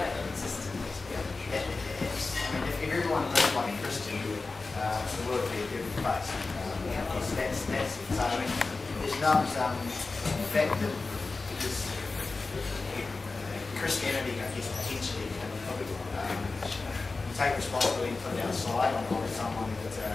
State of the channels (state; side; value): quieter; right; 3.8 dB